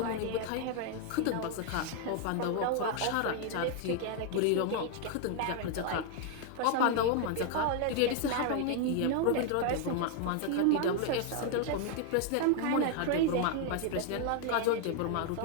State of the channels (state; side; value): different; both; correlation 0.00